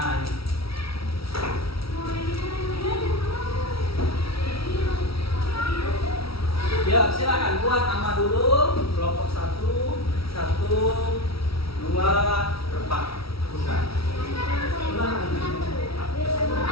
ini. Ya, silakan buat nama dulu. Kelompok 1, 2, 4. Bukan.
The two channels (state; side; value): late; right; 0.75 ms